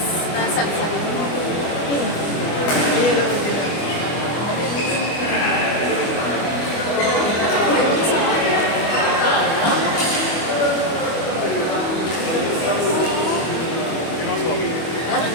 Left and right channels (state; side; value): late; right; 24 ms